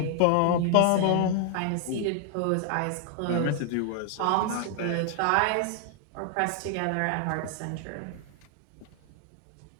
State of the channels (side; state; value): both; different; correlation 0.00